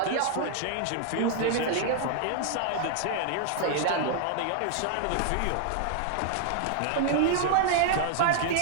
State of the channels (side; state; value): both; different; correlation 0.00